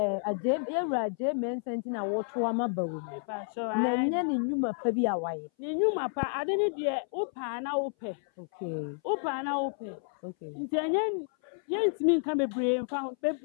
aje mensa nti na wo to ama ba omia pa so na nya ne nyuma pa bi awaye ni nyuma pa ade ne de upa na upe okay upa na upe okay nti enye ye ntimi nka bebre mfa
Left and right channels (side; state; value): right; silent; 57 dB below the other